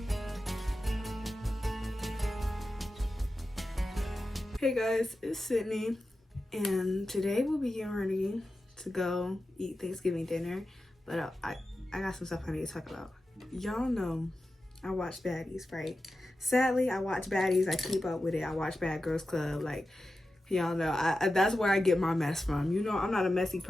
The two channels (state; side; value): normal; both; correlation 0.92